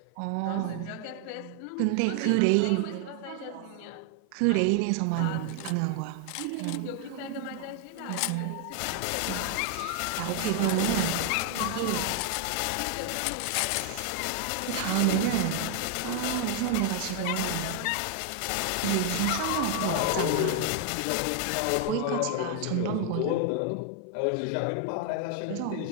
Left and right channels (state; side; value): different; both; correlation 0.00